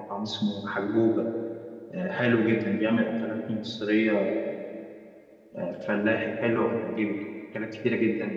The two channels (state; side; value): identical; both; correlation 1.00